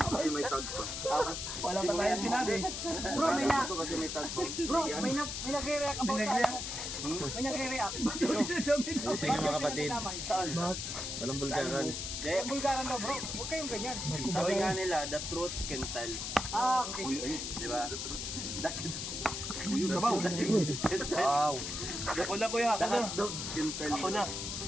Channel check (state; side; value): noise; left; hiss, 4 dB below the sound